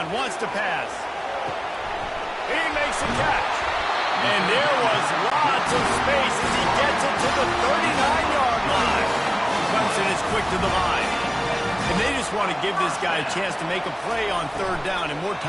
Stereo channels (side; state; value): both; identical; correlation 1.00